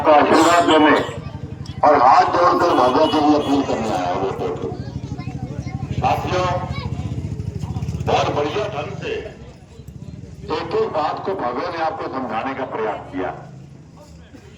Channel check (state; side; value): identical; both; correlation 1.00